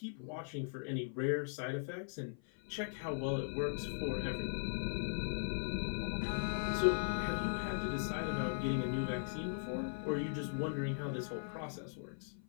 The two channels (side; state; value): right; silent; 52 dB below the other